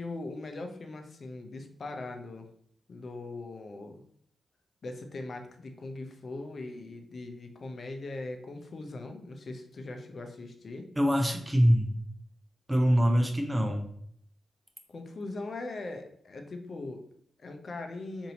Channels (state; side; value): normal; both; correlation 0.97